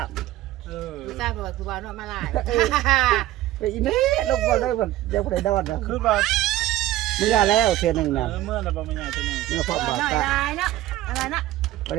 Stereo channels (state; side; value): quieter; left; 15.1 dB